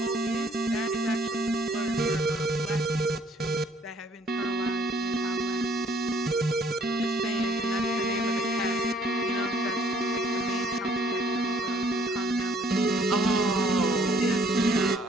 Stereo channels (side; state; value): both; normal; correlation 0.62